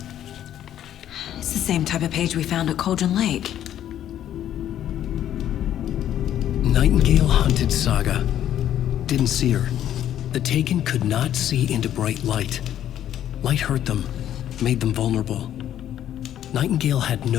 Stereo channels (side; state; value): right; quieter; 11.2 dB